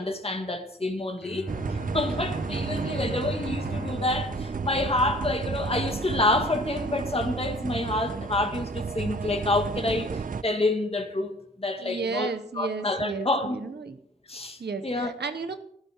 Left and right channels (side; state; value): both; normal; correlation 0.52